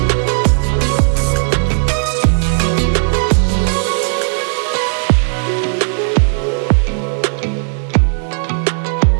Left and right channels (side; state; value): left; silent; 63 dB below the other